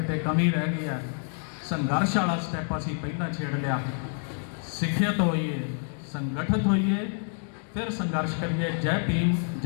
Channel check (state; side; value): silent; right; 60 dB below the other